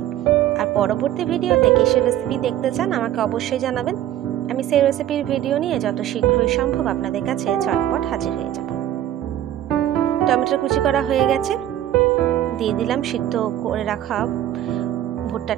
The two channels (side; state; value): left; quieter; 12.2 dB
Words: আর পরবর্তী ভিডিওতে কিসের রেসিপি দেখতে চান আমাকে অবশ্যই জানাবেন। আমি সেই রেসিপির ভিডিও নিয়ে যত শীঘ্রই সম্ভব আপনাদের কাছে চটপট হাজির হয়ে যাব। টমেটো কুচি করা হয়ে গেছে, দিয়ে দিলাম সিদ্ধ করে রাখা